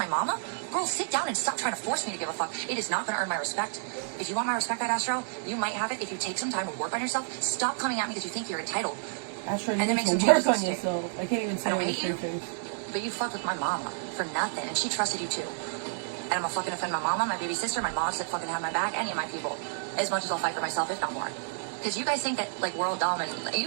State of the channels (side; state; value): left; silent; digital silence